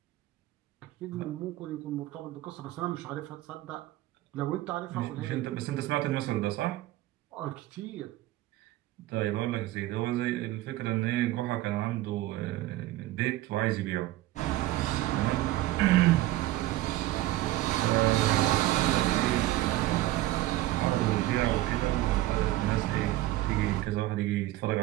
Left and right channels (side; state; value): left; quieter; 16.3 dB